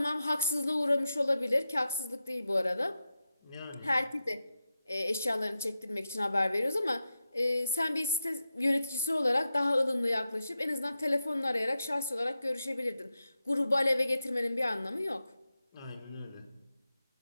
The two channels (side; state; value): both; inverted; correlation -0.90